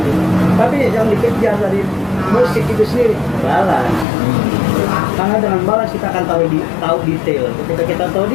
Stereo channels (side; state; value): right; drops out; at 4.0 s